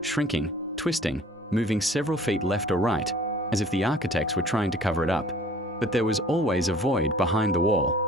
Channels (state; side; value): normal; both; correlation 0.51